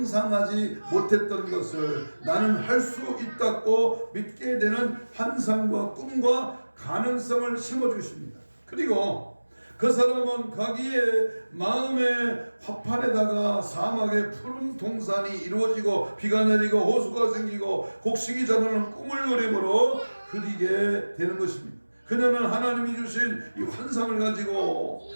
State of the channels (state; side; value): inverted; both; correlation -1.00